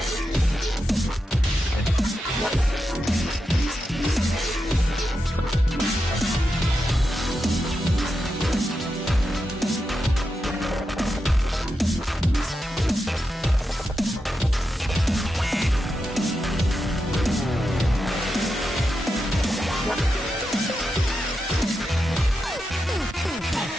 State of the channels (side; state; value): both; normal; correlation 0.87